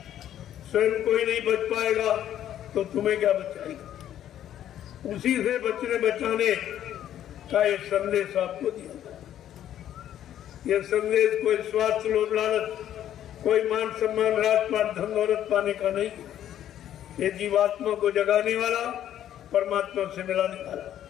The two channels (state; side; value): quieter; right; 11.2 dB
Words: स्वयं कोई नहीं बच पाएगा तो तुम्हें क्या बचाएगा। उसी से बचने बचाने का एक संदेश आपको दिया। यह संदेश कोई स्वार्थ लोभ लालच, कोई मान सम्मान राजपाट धन दौलत पाने का नहीं, ये जीवात्मा को जगाने वाला, परमात्मा से मिलाने वाला